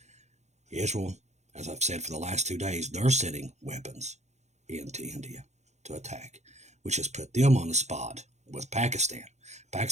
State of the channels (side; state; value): left; late; 0.33 ms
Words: Israel, as I've said for the last 2 days, they're sending weapons into India to attack, which has put them on the spot with Pakistan.